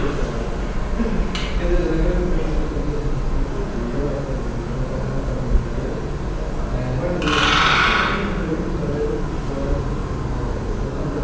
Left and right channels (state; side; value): identical; both; correlation 1.00